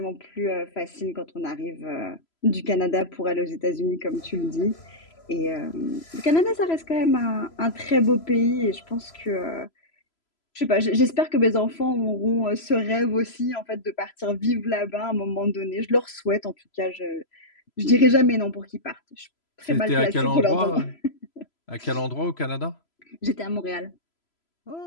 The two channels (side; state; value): right; late; 3.0 ms